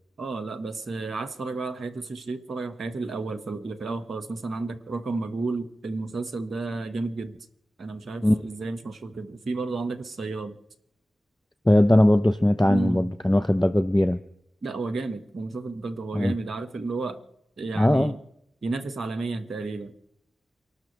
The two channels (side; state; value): both; normal; correlation 0.96